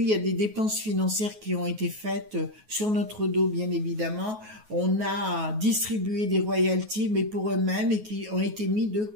Il y a des dépenses financières qui ont été faites sur notre dos, bien évidemment. On a distribué des royalties, mais pour eux-mêmes, et qui ont été mis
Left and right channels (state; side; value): late; left; 9.4 ms